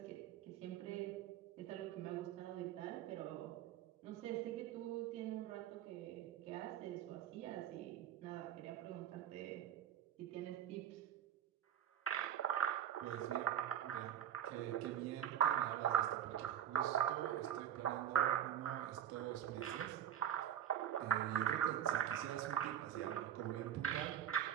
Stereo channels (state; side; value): quieter; left; 10.0 dB